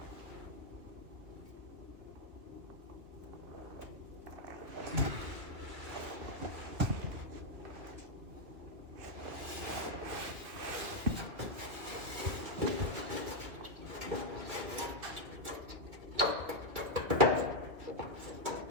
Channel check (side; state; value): left; late; 2.3 ms